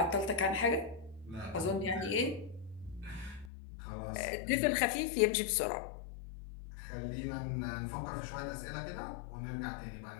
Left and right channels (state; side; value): drops out; right; at 3.5 s